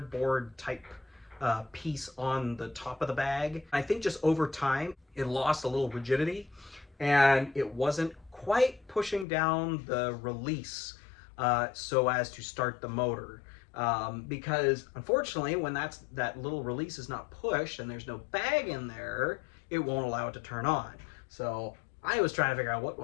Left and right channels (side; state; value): right; drops out; at 9.2 s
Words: type piece on the top of the bag. I think just over time, it lost a little rigidity, and it wasn't quite pushing down the release so as to start the motor. because unfortunately, when that little release is not pushed and there's no bag in there, it won't allow it to turn on. So I was trying to figure out what